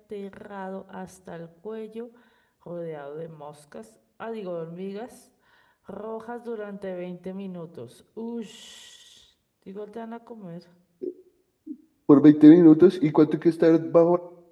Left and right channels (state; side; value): identical; both; correlation 1.00